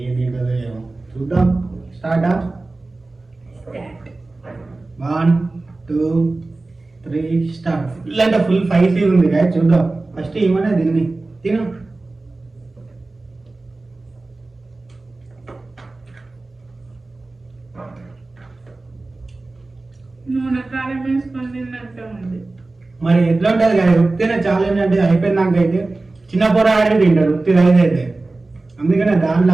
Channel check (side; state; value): left; quieter; 3.2 dB